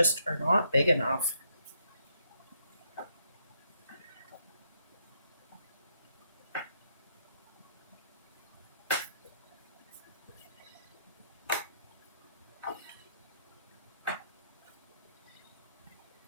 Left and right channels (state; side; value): inverted; both; correlation -0.75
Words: are not big enough.